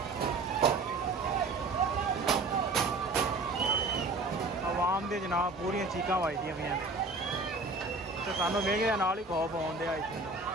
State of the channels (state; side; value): quieter; left; 3.4 dB